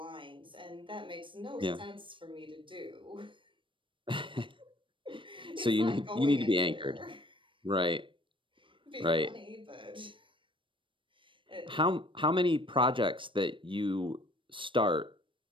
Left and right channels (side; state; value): left; late; 0.25 ms